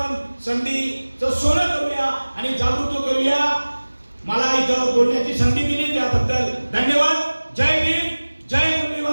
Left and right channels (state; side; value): inverted; both; correlation -1.00